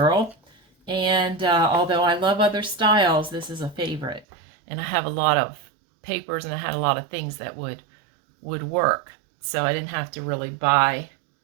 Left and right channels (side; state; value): left; drops out; at 4.2 s